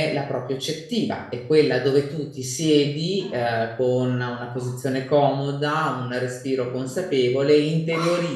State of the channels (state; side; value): identical; both; correlation 1.00